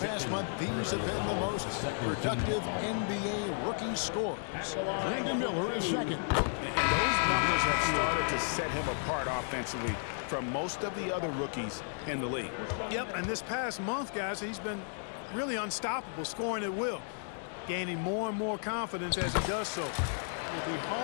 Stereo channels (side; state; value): right; silent; digital silence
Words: month, these have been the most productive NBA rookie scores. Brandon Miller is second. And those numbers have started to set him apart offensively from most of the other rookies in the league. Yep, and this past month, guys, he's been really unstoppable, scoring at will, gaining more and more confidence as he does so. It'll be